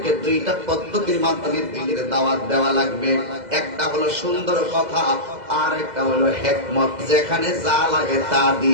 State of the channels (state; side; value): late; left; 2.0 ms